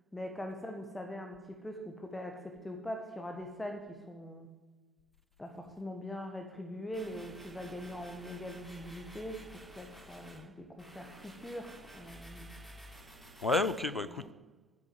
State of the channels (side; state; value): both; normal; correlation 0.62